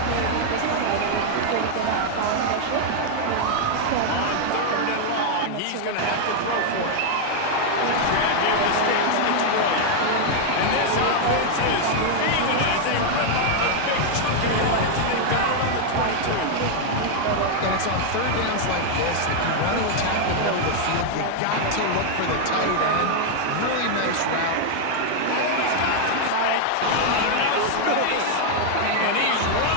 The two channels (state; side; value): different; both; correlation 0.00